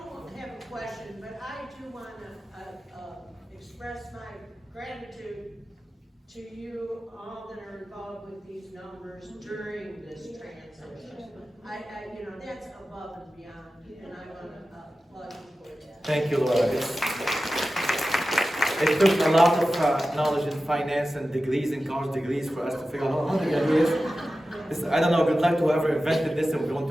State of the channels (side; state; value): both; normal; correlation 0.94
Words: have a question, but I do want to express my gratitude to you all that are involved with these numbers during this transition. That's above and beyond, and I want to applaud you for that. Thank you, Laura. It took a lot of knowledge in finance and degrees and college degrees for us to figure out how to do this. I don't know, good luck to whoever invented this and we're going